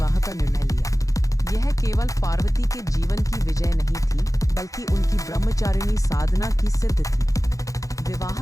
का निर्णय लिया। यह केवल पार्वती के जीवन की विजय नहीं थी, बल्कि उनकी ब्रह्मचारिणी साधना की सिद्ध थी।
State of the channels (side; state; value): right; late; 0.16 ms